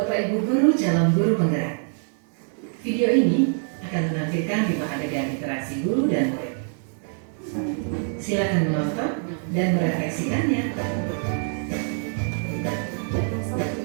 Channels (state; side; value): silent; left; 57 dB below the other